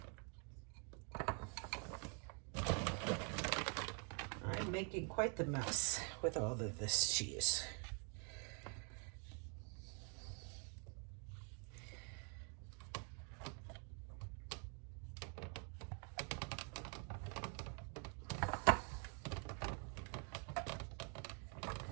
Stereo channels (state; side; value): quieter; left; 39.3 dB